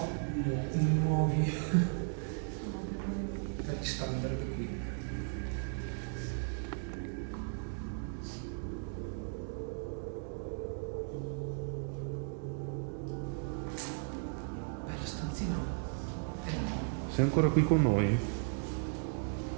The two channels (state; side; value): silent; left; 54 dB below the other